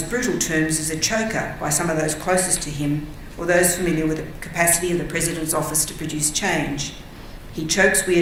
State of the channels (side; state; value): both; identical; correlation 1.00